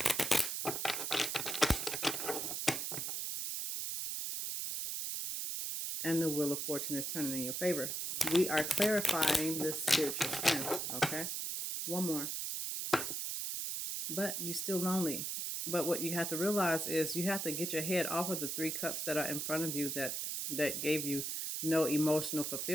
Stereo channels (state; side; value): noise; right; hiss, 2 dB below the sound